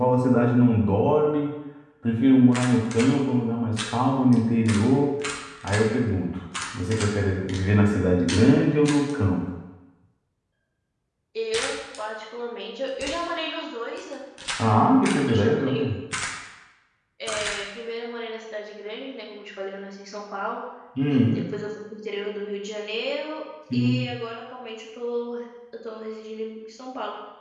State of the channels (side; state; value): both; identical; correlation 1.00